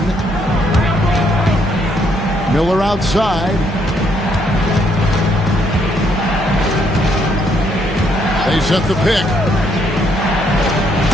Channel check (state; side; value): normal; both; correlation 0.71